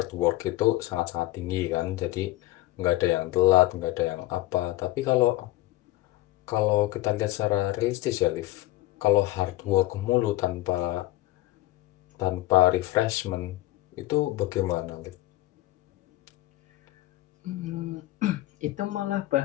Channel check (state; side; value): quieter; right; 17.2 dB